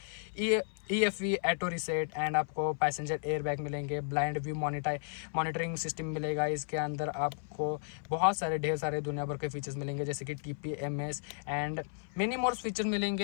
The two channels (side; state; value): right; silent; 55 dB below the other